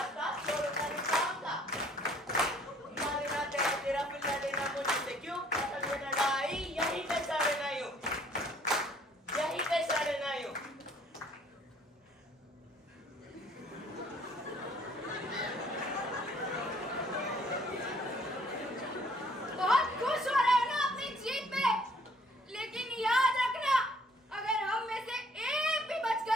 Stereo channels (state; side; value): normal; both; correlation 0.60